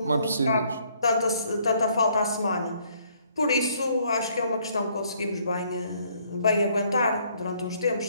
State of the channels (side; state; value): both; inverted; correlation -0.65